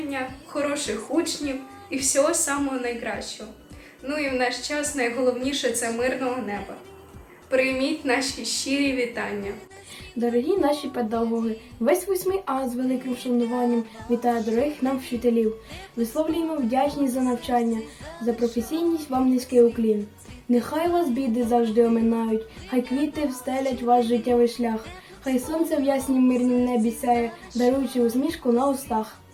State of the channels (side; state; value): both; identical; correlation 1.00